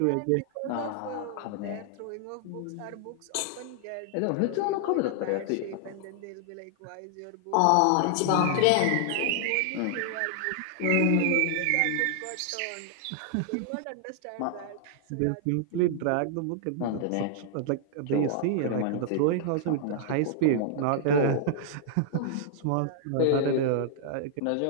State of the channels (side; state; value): both; different; correlation -0.01